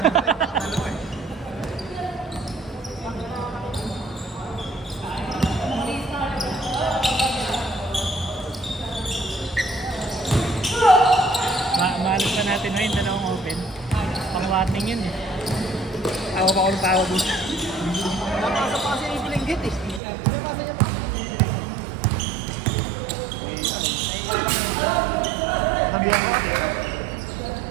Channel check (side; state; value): left; drops out; at 20.0 s